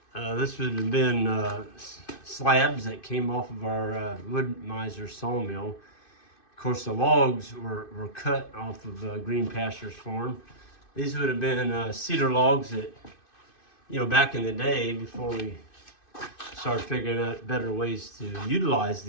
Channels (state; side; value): late; right; 2.6 ms